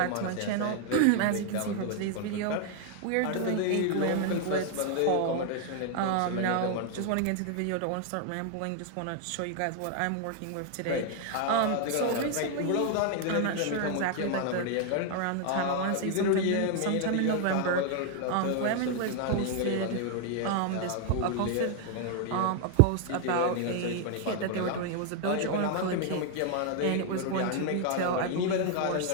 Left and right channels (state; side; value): different; both; correlation 0.00